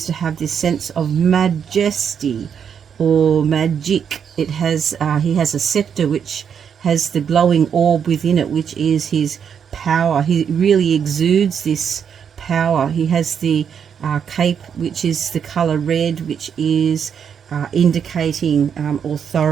to have this sense of majesty or magic. It has he has a scepter which has the glowing orb within it, which is his power. He really exudes this power. He has the cape, which is the color red, which is indicating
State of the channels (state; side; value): quieter; left; 7.6 dB